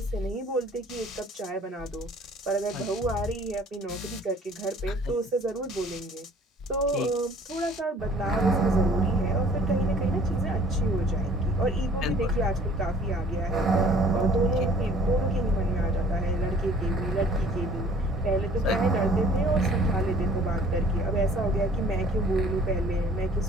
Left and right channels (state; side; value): normal; both; correlation 0.53